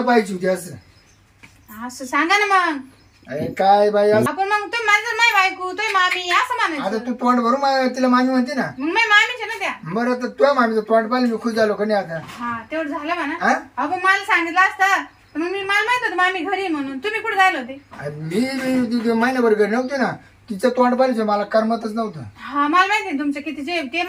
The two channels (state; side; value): identical; both; correlation 1.00